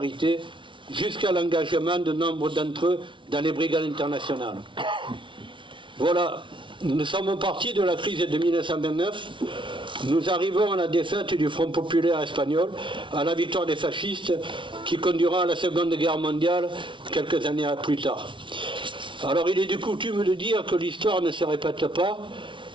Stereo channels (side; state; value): left; late; 0.24 ms